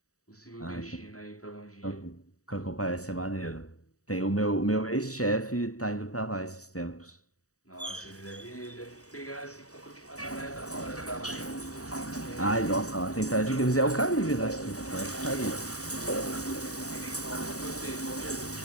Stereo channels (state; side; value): late; right; 0.66 ms